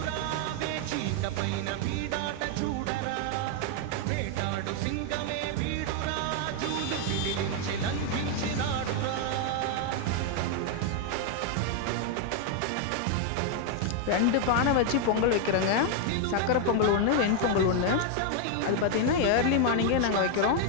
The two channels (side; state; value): both; different; correlation 0.00